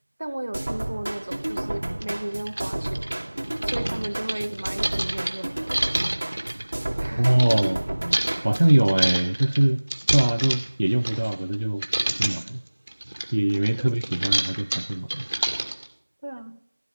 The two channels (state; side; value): inverted; both; correlation -1.00